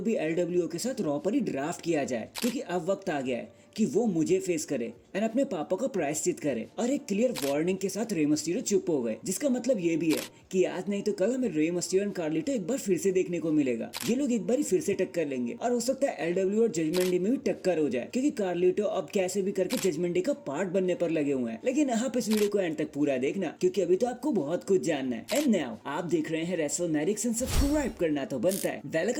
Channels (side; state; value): both; identical; correlation 1.00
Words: भी LWO के साथ रॉ पर ही ड्राफ्ट किया जाए, क्योंकि अब वक्त आ गया है कि वो मुझे फेस करे एंड अपने पापा का प्रायश्चित करे। और एक क्लियर वार्निंग के साथ रे मस्टिरो चुप हो गए, जिसका मतलब ये भी है कि आज नहीं तो कल हमें रे मस्टिरो एंड कार्लिटो एक बार फिर से देखने को मिलेगा। ये लोग एक बार ही फिर से टक्कर लेंगे और हो सकता है LWO और जजमेंट डे में भी टक्कर हो जाए, क्योंकि कार्लिटो अब कैसे भी करके जजमेंट डे का पार्ट बनने पर लगे हुए हैं। लेकिन आप इस वीडियो को एंड तक पूरा देखना, क्योंकि अभी तो आपको बहुत कुछ जानना है। एंड नाउ आप देख रहे हैं रेसलमैनिक्स एंड सब्सक्राइब करना तो बनता है। वेल,